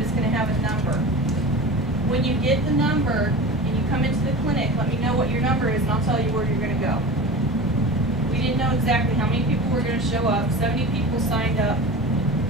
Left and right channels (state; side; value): normal; both; correlation 0.32